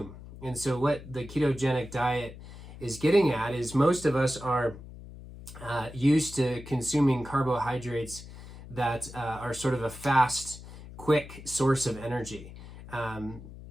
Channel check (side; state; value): left; noise; hum, 15 dB below the sound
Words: And so what the ketogenic diet is getting at is most of us are used to consuming carbohydrates that are sort of a fast, quick source of energy.